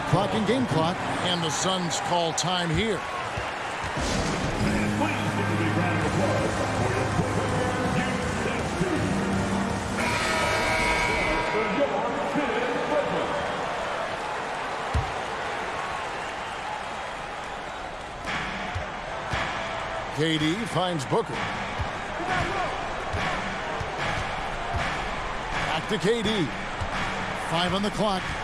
clock and game clock, and the Suns call time here. KD finds Booker. Back to KD. 5 on the clock.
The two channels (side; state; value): both; identical; correlation 1.00